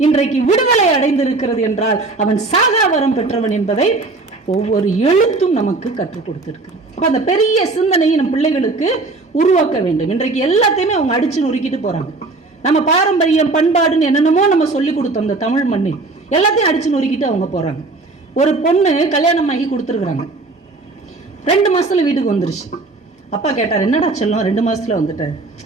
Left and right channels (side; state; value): left; quieter; 3.5 dB